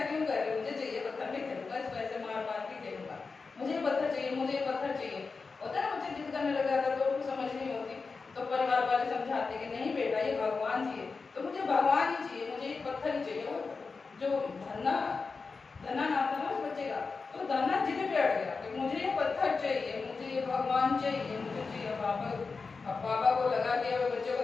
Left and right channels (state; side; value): quieter; right; 4.5 dB